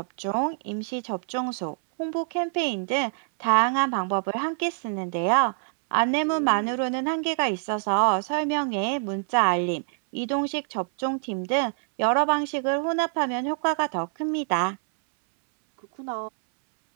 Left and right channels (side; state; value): left; silent; 61 dB below the other